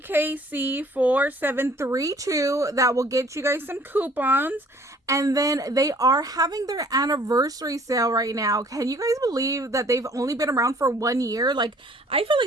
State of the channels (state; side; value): normal; both; correlation 0.56